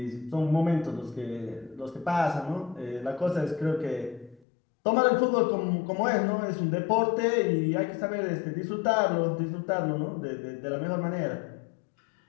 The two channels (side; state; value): right; drops out; at 4.4 s